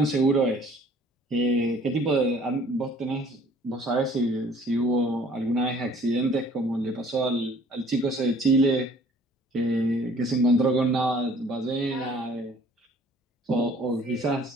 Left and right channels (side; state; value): both; normal; correlation 0.54